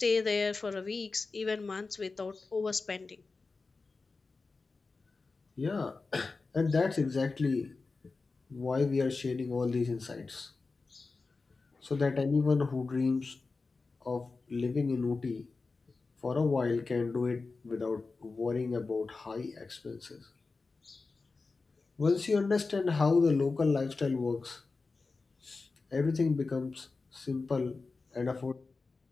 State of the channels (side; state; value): right; quieter; 4.0 dB